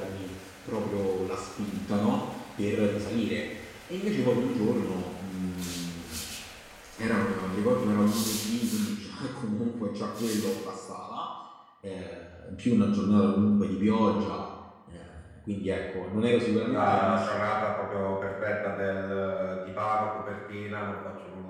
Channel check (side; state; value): both; identical; correlation 1.00